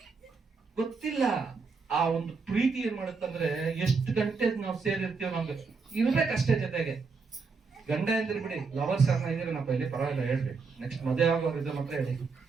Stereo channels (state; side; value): quieter; left; 4.7 dB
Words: ಗೊತ್ತಿಲ್ಲ ಆ ಒಂದು ಪ್ರೀತಿ ಏನ್ ಮಾಡುತ್ತಂದ್ರೆ, ಎಷ್ಟು ಗಂಟೆ ನಾವು ಸೇರಿರ್ತೀವಿ ನಮ್ಗೆ ಇರ್ಬೇಕಷ್ಟೇ ಜೊತೆಗೆ. ಗಂಡ ಎಂದ್ರೆ ಬಿಡಿ, ಲವರ್ಸ್ ಯಾರನ್ನ ಇದೀರನಪ್ಪ ಇಲ್ಲಿ ಪರವಾಗಿಲ್ಲ ಹೇಳ್ರಿ, ನೆಕ್ಸ್ಟ್ ಮದುವೆ ಆಗೋರು ಇದ್ರೆ ಮಾತ್ರ ಹೇಳಿ.